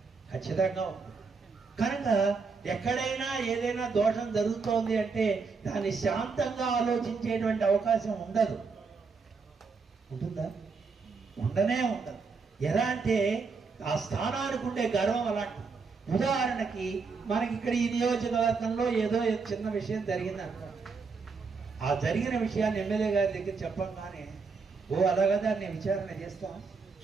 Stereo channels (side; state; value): left; quieter; 4.8 dB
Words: ఖచ్చితంగా ఉంటుంది. కనుక ఎక్కడైనా ఏదైనా దోషం జరుగుతోంది అంటే దాన్ని శాంతంగా ఆలోచించేటువంటి అవకాశం ఉండదు. ఉంటుందా? ఉండనే ఉండదు. ఎలా అంటే ఆ స్థానానికి ఉండే గర్వం అలాంటి. ఉదాహరణకి మనకి ఇక్కడ ఈ నియోజకవర్గంలో ఏదో చిన్న విషయం జరిగింది అనుకోండి. ఆ జరిగిన విషయాన్ని ఎమ్మెల్యే గారి దగ్గర చెప్పంగానే ఓ అలాగా దాన్ని విచారణ చేస్తాం